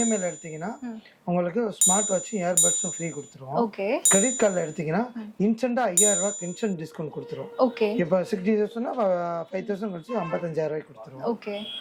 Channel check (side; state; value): both; identical; correlation 1.00